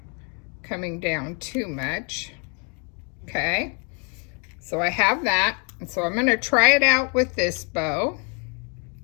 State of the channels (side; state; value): right; quieter; 37.2 dB